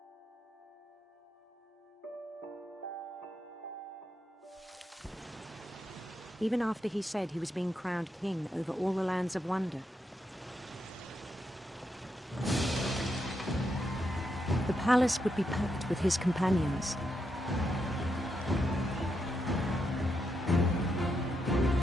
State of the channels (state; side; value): normal; both; correlation 0.82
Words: Even after he said he was being crowned king over all the lands of wonder. The palace would be packed with his companions.